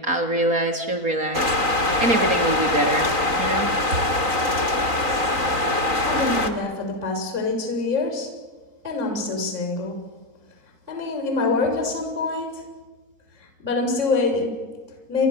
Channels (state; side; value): late; left; 3.9 ms